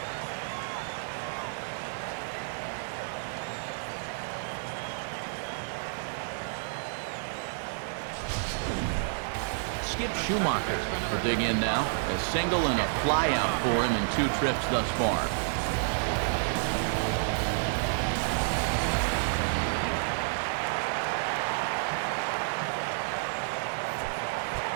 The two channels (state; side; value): silent; left; 58 dB below the other